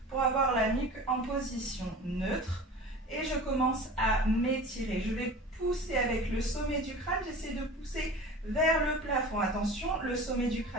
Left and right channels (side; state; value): both; normal; correlation 0.38